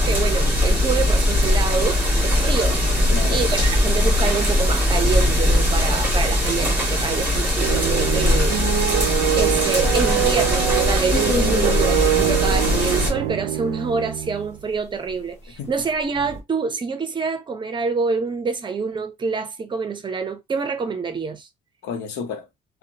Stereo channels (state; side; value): normal; both; correlation 0.57